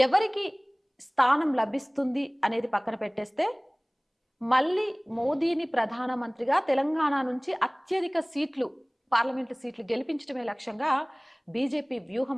ఎవరికి స్థానం లభిస్తుంది అనేది పక్కన పెట్టేస్తే మళ్ళీ మోదీని ప్రధానమంత్రిగా తెలంగాణ నుంచి అత్యధిక సీట్లు పార్లమెంటు సీట్లు గెలిపించడమే లక్ష్యంగా బీజేపీ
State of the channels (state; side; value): identical; both; correlation 1.00